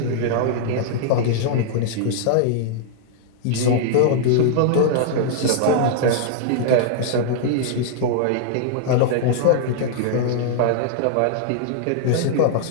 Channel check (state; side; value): different; both; correlation -0.01